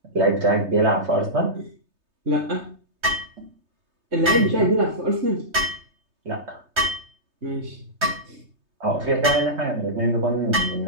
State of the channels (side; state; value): left; late; 3.2 ms